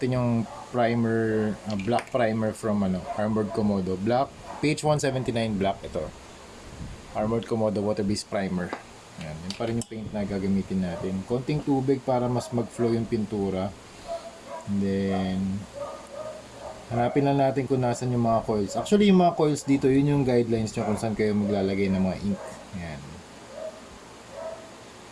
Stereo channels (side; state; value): both; identical; correlation 1.00